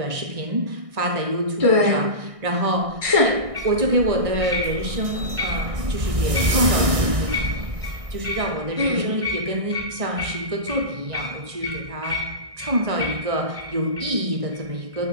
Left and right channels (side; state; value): left; late; 1.6 ms